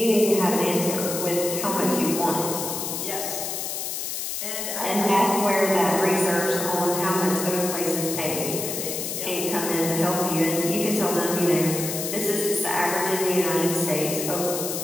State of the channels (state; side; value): noise; left; hiss, 4 dB below the sound